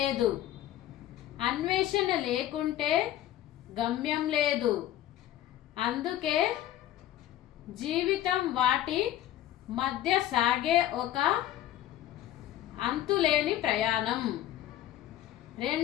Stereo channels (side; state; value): right; quieter; 12.8 dB